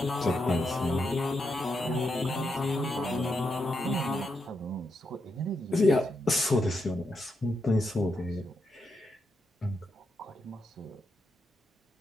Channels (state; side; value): normal; both; correlation 0.83